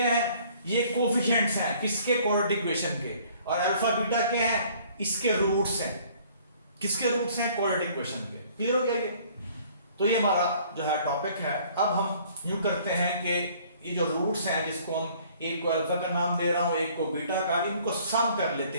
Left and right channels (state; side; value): inverted; both; correlation -0.56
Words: है? ये कोएफिशिएंट्स हैं किसके? क्वाड्रेटिक इक्वेशन के। और अल्फा बीटा क्या है? इसके रूट्स हैं। किसके रूट्स हैं? क्वाड्रेटिक इक्वेशन के। क्लियर हो गया ये। तो ये हमारा जो है टॉपिक है। अब हम यूं करते हैं कि ये जो रूट्स हैं, जिसको हम एक को अल्फा का नाम दे रहा हूं, एक को बीटा का, इनको सम कर लेते